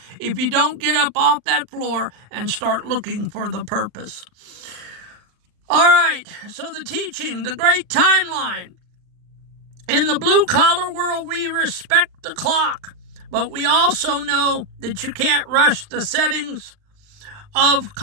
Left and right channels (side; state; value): left; late; 39 ms